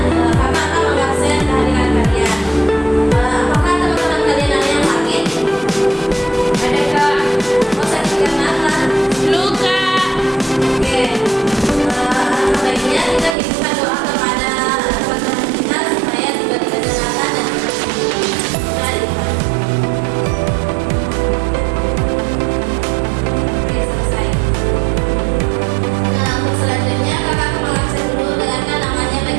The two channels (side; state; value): left; drops out; at 13.4 s